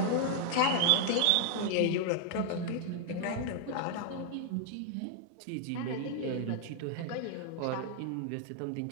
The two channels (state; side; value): different; both; correlation 0.00